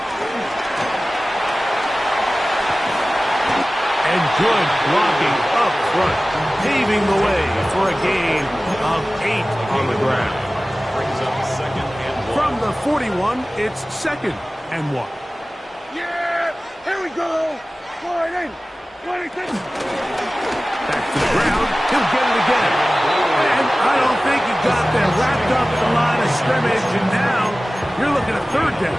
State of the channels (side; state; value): both; normal; correlation 0.97